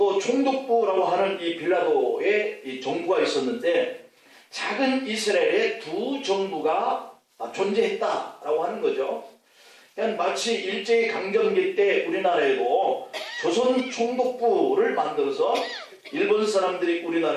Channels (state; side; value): identical; both; correlation 1.00